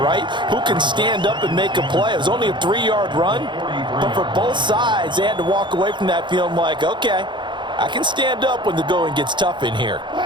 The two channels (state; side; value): late; left; 0.23 ms